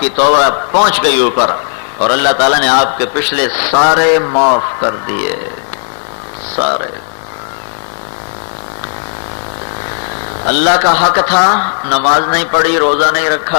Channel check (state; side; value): silent; right; digital silence